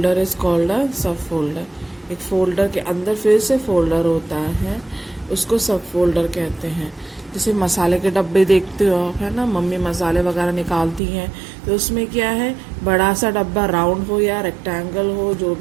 is called a सब फोल्डर। एक फोल्डर के अंदर फिर से फोल्डर होता है, उसको सब फोल्डर कहते हैं। जैसे मसाले के डब्बे देखते हो आप, है ना, मम्मी मसाले वगैरह निकालती हैं तो उसमें क्या है, बड़ा सा डब्बा राउंड हो या रेक्टेंगल हो, जो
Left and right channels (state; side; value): drops out; left; at 11.0 s